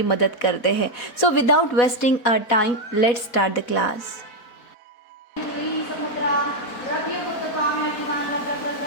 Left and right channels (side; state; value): right; late; 4.1 ms